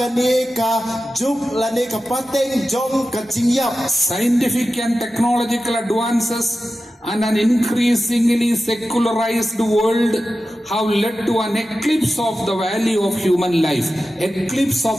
ka juk lani ka pateng jong ka jingyap. Scientific and technological advances and an increasingly secularized world have led to an eclipse of the value of human life. Eclipse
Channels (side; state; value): both; normal; correlation 0.93